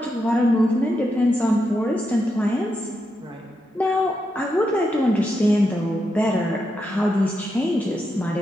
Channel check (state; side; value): normal; both; correlation 0.84